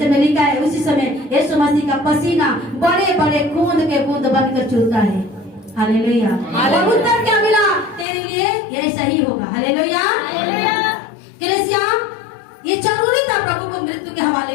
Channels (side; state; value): right; drops out; at 8.1 s